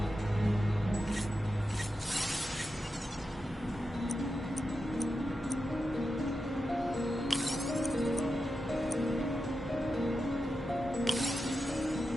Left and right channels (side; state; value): both; normal; correlation 0.90